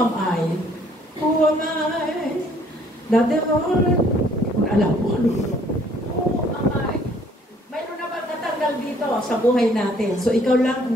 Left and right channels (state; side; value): normal; both; correlation 0.61